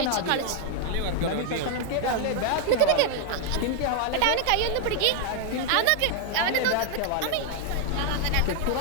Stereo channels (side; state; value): both; different; correlation 0.00